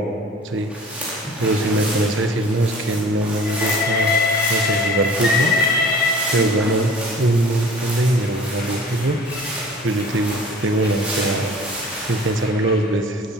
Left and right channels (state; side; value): normal; both; correlation 0.46